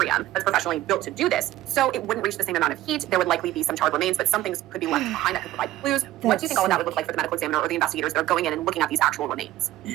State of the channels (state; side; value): quieter; left; 14.8 dB